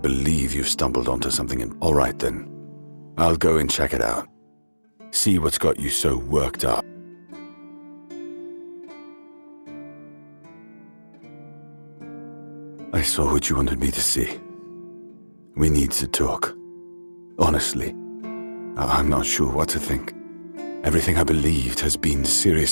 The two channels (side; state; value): both; inverted; correlation -1.00